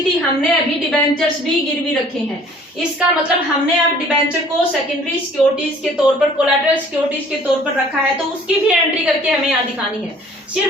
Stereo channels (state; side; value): normal; both; correlation 0.53